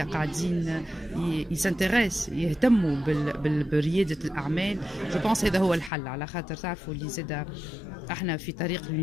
قاعدين يسانتيريس يهتموا برياده الاعمال. جو بونس هذا هو الحل، على خاطر تعرفوا اللي زاده احنا في طريق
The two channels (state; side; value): drops out; right; at 5.9 s